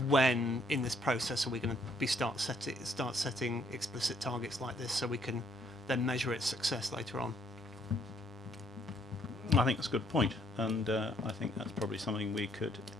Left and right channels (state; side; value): normal; both; correlation 0.68